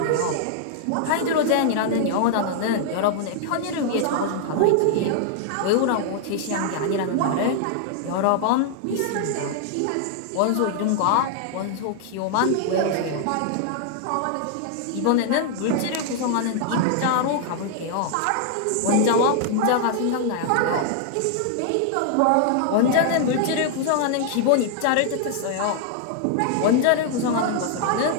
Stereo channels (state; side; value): different; both; correlation 0.00